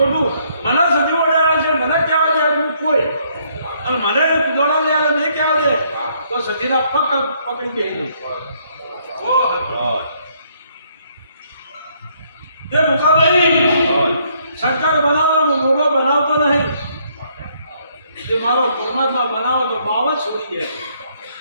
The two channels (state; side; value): inverted; both; correlation -0.69